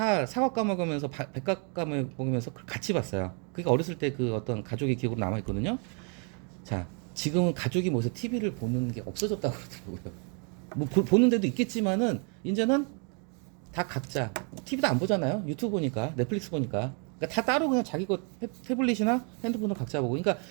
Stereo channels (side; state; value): left; quieter; 37.7 dB